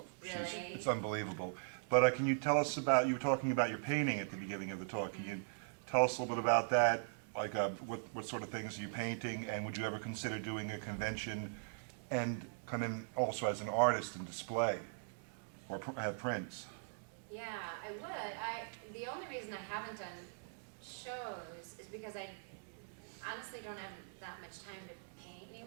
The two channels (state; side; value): silent; left; digital silence